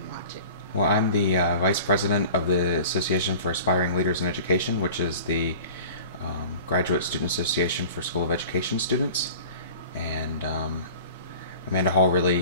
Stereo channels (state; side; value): inverted; both; correlation -0.41